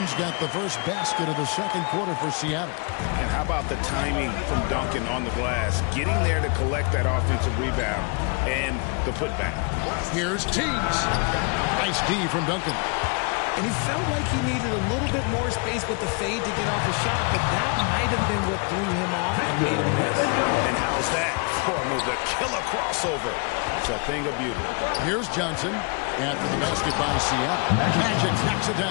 got the first basket of the second quarter for Seattle. And how about the timing from Duncan on the glass? Getting there to collect that offensive rebound and the putback. Here's Teagues. Nice D from Duncan. And he felt like he needed a little bit more space with the fade to get off a shot, but that might have been what threw him off and made him miss. And how's that for a move? The killer crossover. It's a thing of beauty. Here's Johnson after the basket by Seattle. Magic knocks it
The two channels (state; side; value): quieter; right; 33.6 dB